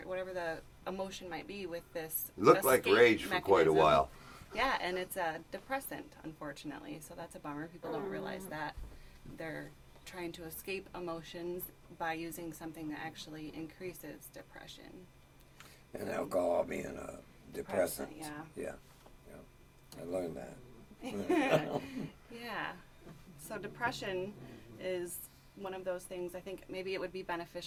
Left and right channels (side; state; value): both; identical; correlation 1.00